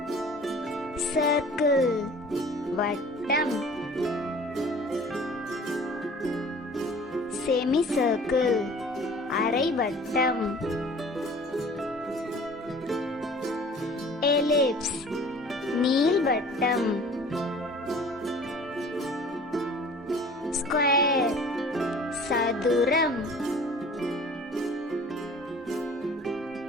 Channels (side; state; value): both; normal; correlation 0.47